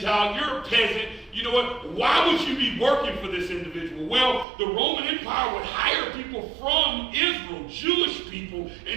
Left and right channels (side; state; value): left; drops out; at 4.5 s